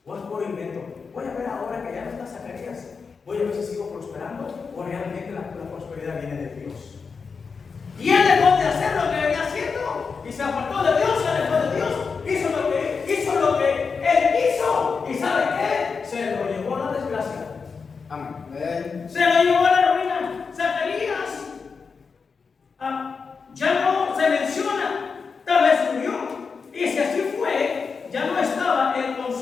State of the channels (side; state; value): right; quieter; 5.2 dB